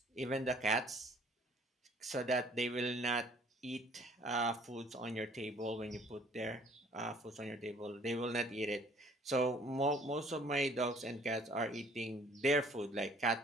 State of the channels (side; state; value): both; normal; correlation 0.57